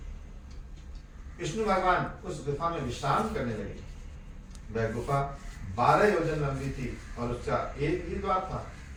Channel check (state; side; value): identical; both; correlation 1.00